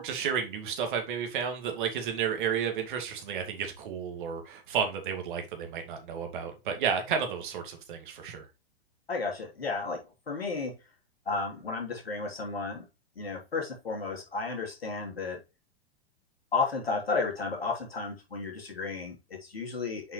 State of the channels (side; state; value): both; normal; correlation 0.14